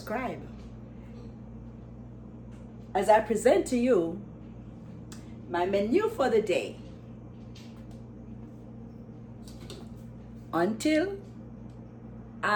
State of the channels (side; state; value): both; identical; correlation 1.00